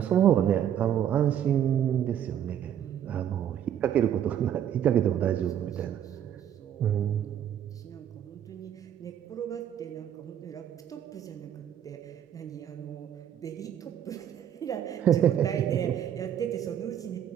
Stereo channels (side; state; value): left; quieter; 10.0 dB